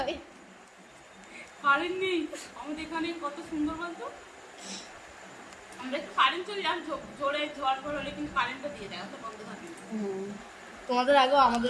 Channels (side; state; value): both; identical; correlation 1.00